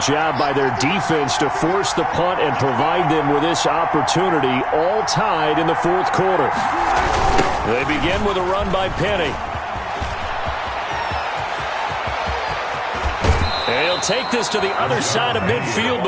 job by their defense to force the punt and provide them with this opportunity, all tied in the 4th quarter. They begin with a run by Penny. And he'll take this to the other side of midfield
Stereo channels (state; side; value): identical; both; correlation 1.00